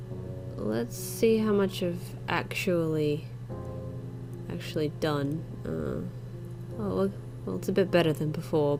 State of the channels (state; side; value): identical; both; correlation 1.00